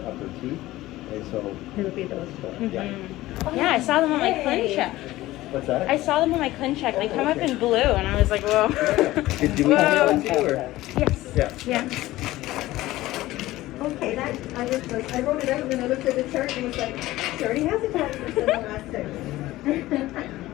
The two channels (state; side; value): quieter; right; 16.9 dB